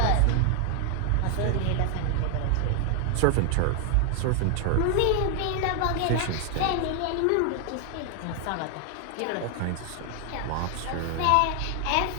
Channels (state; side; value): different; both; correlation 0.00